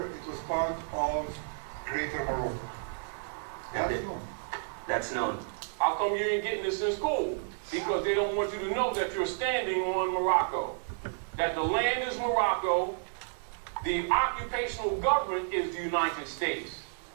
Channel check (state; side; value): silent; left; digital silence